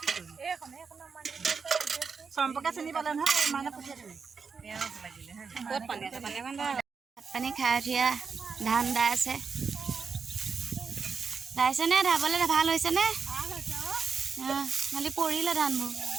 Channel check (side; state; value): left; quieter; 5.5 dB